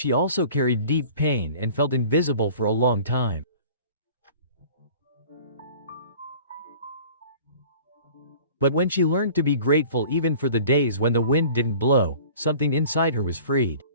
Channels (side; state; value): both; inverted; correlation -0.46